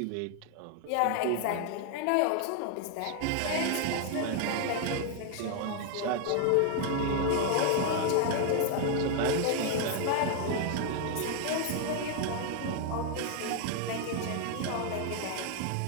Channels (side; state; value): both; different; correlation 0.00